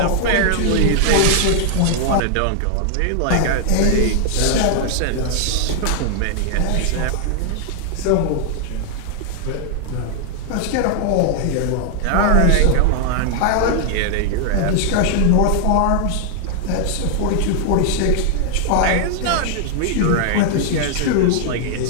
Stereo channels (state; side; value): different; both; correlation 0.00